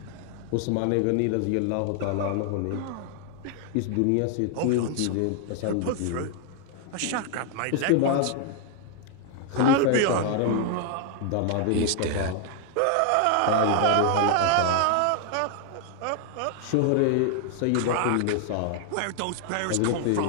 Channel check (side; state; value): both; different; correlation 0.00